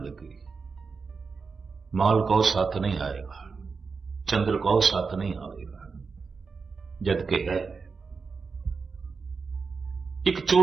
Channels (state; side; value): quieter; left; 4.9 dB